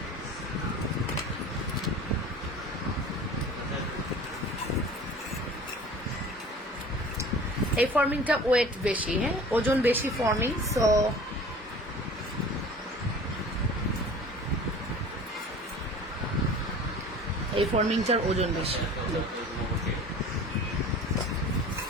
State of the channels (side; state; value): both; normal; correlation 0.42